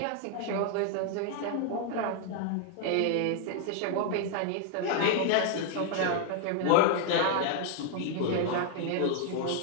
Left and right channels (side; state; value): both; different; correlation 0.00